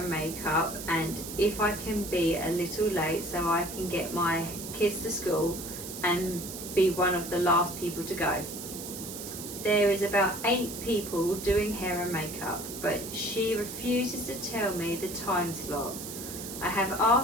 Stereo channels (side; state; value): right; noise; hiss, 9 dB below the sound